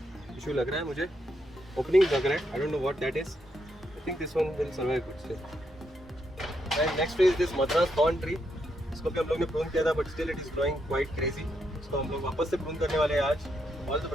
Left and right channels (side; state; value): both; normal; correlation 0.79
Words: issue लग रहा है मुझे. Opening लग रहा है. I don't know what that is. I think this one will survive good still. And next tree is this Madras thorn tree. इसको भी हम लोग ने prune किया था, but still it is growing quite crazy. इसको हम लोग वापस से prune करने वाले हैं आज. All the